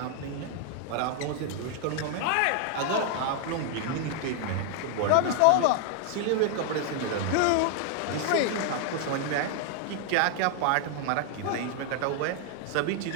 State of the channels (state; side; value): different; both; correlation 0.01